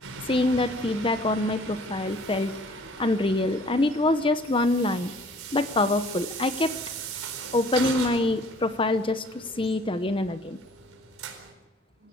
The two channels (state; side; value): normal; both; correlation 0.54